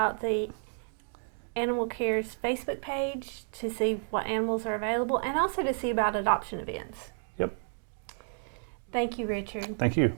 the Animal Care's Facebook page to see what animals are available, and also to see about adoption events. Yep. Thank you, Richard. Thank you.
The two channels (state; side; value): silent; left; 57 dB below the other